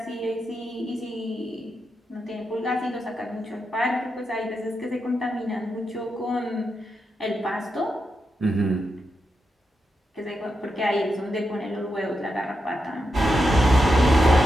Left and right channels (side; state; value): both; normal; correlation 0.86